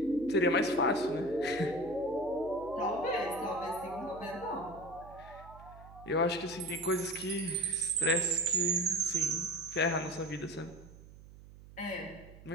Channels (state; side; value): noise; right; hum, 19 dB below the sound